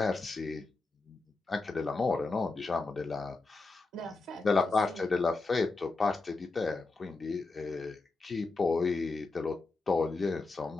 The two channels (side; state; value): right; quieter; 3.7 dB